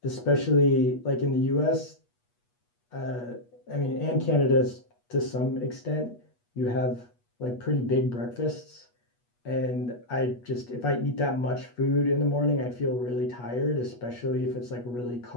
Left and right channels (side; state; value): right; late; 8.3 ms